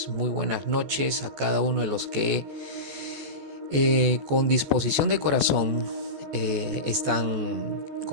Muy buenas noches a cada uno de los que con disposición de corazón están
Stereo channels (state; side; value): late; left; 14 ms